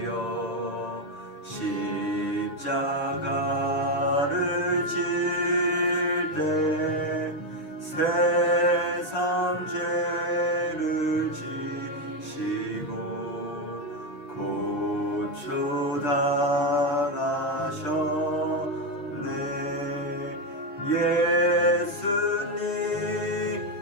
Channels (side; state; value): right; late; 6.7 ms